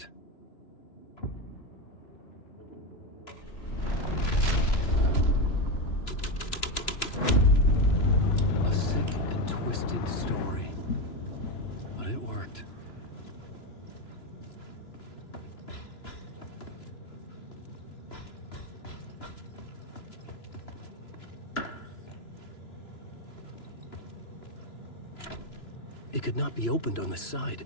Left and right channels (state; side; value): late; right; 2.9 ms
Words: A sick and twisted story, but it worked. It could not be opened on the side.